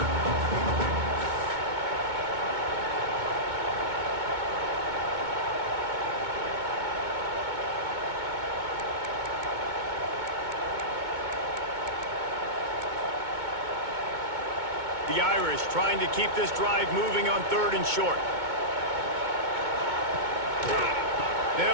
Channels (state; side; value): late; left; 2.2 ms